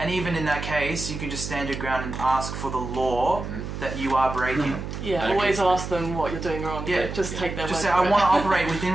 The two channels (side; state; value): right; noise; hum, 7 dB below the sound